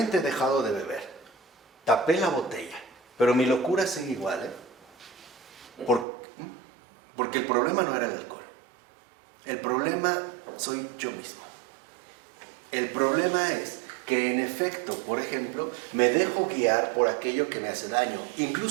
he dejado de beber. Tapé la botella, pero mi locura sigue igual, porque el problema no era el alcohol. El problema soy yo mismo. El problema es que en efecto, por ejemplo, me dejo guiar por aquello que me hace daño.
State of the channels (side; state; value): left; drops out; at 6.1 s